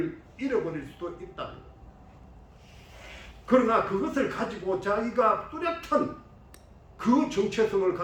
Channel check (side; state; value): both; identical; correlation 1.00